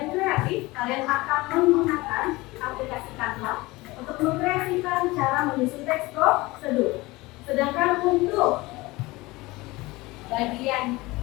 kreatif, kalian akan menggunakan aplikasi Canva untuk mengkreasikan cara menyusun teks prosedur. Sedangkan untuk bagian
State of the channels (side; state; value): right; quieter; 21.4 dB